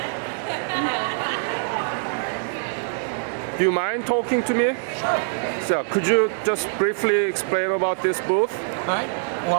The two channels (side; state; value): left; silent; digital silence